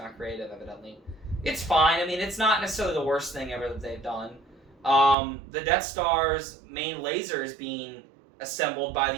creative, evidently. It's fine. It's not necessarily the worst thing ever that they've done. The Death Star's main laser is being assembled by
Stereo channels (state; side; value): drops out; left; at 5.2 s